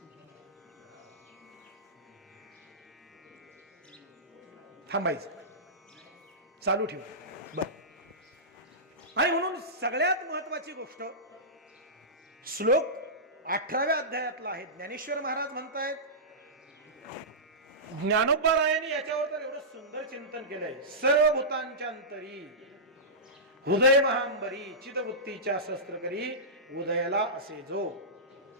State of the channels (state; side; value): normal; both; correlation -0.17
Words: थांबायचं, चालू ठेवा. बर. आणि म्हणून सगळ्यात महत्वाची गोष्ट श्लोक 18व्या अध्यायातला आहे. ज्ञानेश्वर महाराज म्हणतायत, ज्ञानोबा रायांनी याच्यावर तर एवढं सुंदर चिंतन केलंय. सर्व भूतांच्या अंतरी हृदय महांबरी चिदवृत्तीच्या शस्त्र करी उदयाला असे जो